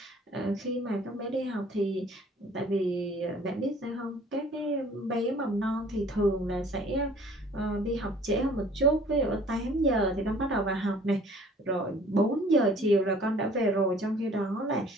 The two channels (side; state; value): both; normal; correlation 0.53